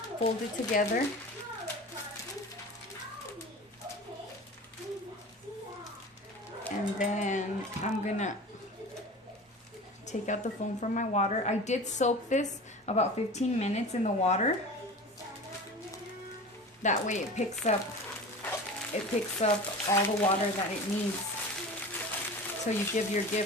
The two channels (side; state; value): both; normal; correlation 0.35